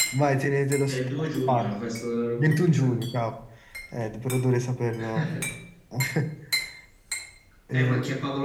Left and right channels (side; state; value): both; identical; correlation 1.00